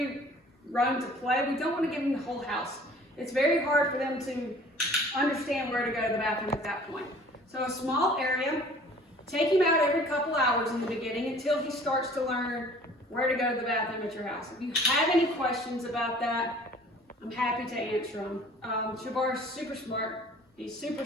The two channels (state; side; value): normal; both; correlation 0.50